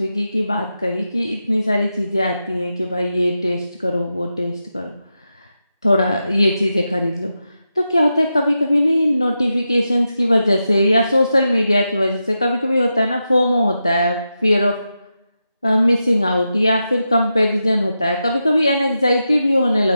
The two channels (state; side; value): inverted; both; correlation -0.88